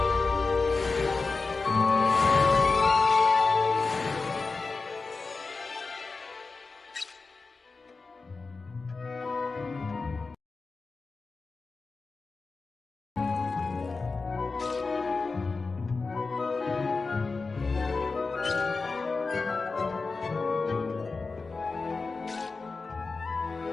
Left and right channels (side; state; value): right; quieter; 4.1 dB